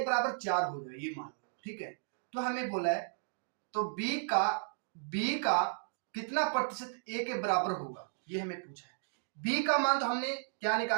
बराबर 4 हो जाएगा, ये मान लो, ठीक है। तो हमें बोला है, तो b का कितना प्रतिशत a के बराबर होगा, ये हमें पूछा है। b का मान तो हमने क्या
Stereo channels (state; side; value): silent; left; digital silence